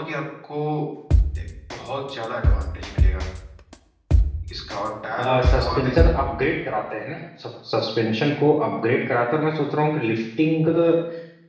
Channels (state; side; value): identical; both; correlation 1.00